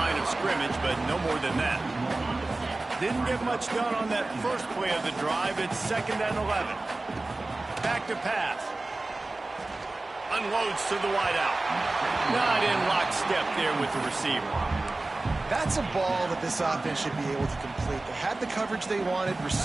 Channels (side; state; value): left; quieter; 3.1 dB